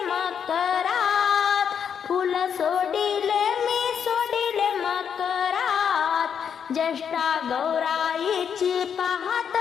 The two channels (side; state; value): right; quieter; 7.6 dB